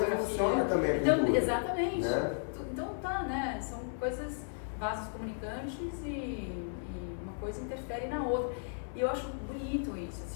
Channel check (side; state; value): right; silent; 55 dB below the other